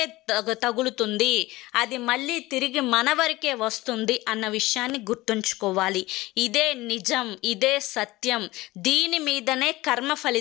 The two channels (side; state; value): right; quieter; 19.3 dB